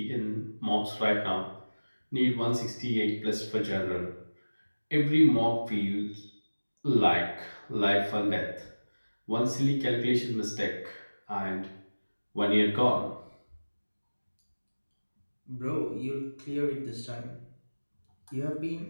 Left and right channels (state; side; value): inverted; both; correlation -1.00